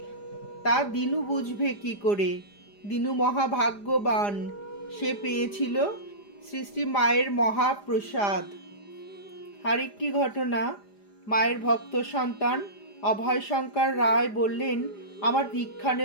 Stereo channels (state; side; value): late; right; 4.9 ms